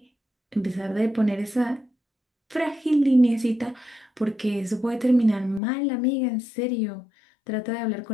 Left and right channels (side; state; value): right; drops out; at 5.6 s